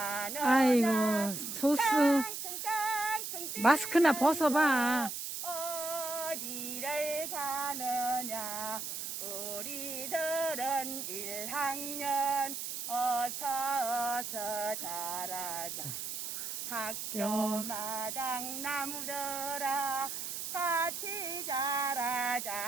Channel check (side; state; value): right; noise; hiss, 5 dB below the sound